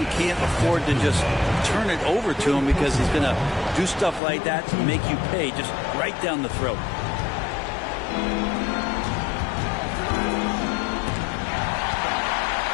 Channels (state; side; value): drops out; right; at 4.2 s